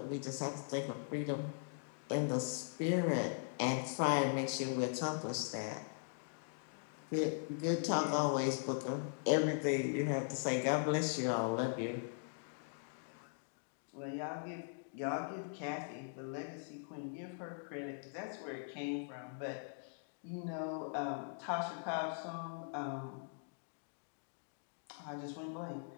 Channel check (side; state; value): right; silent; digital silence